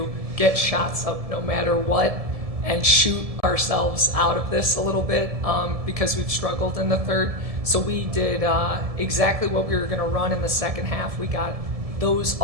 get shots up no matter what and shoot ourselves out of this a little bit because we've struggled in the third. So we did exactly what we were going to run in the second half. We got those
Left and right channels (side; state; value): left; late; 1.7 ms